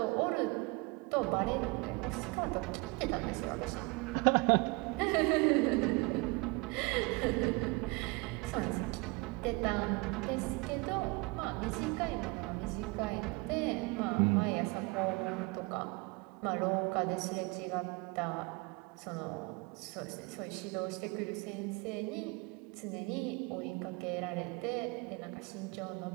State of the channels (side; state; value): left; quieter; 27.5 dB